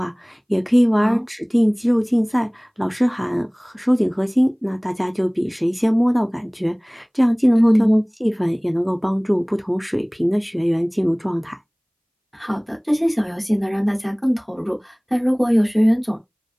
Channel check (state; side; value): identical; both; correlation 1.00